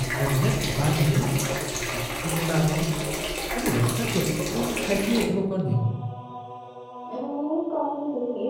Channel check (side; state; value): both; identical; correlation 1.00